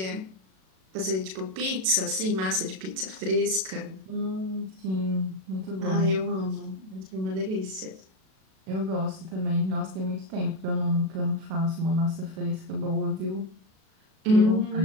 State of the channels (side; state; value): left; late; 37 ms